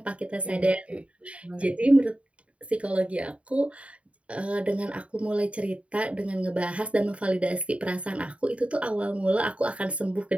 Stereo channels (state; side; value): late; left; 0.063 ms